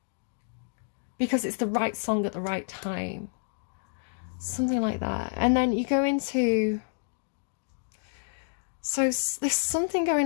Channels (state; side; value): silent; right; digital silence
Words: because it's the right song at the right time, something like that. And then you go into, so there's something